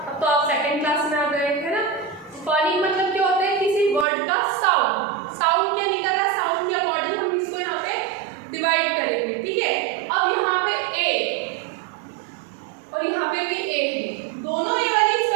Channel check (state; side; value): drops out; left; at 4.0 s